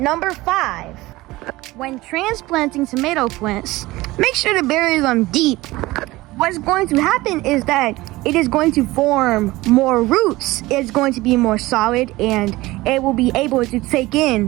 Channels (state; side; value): quieter; left; 19.3 dB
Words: 5, when transplanting tomato plants, make sure to bury them deep. What's going to happen is that it is going to form more roots, it's going to be more solid, and it will be able to take